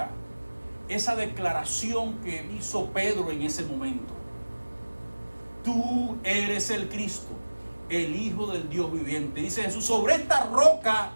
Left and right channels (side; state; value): both; inverted; correlation -1.00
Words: Esa declaración que hizo Pedro en ese momento. Tú eres el Cristo, el Hijo del Dios viviente. Dice Jesús: sobre esta roca